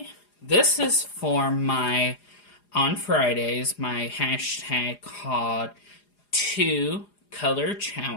this is for my, on Fridays, my hashtag called 2 Color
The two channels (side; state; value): right; late; 4.9 ms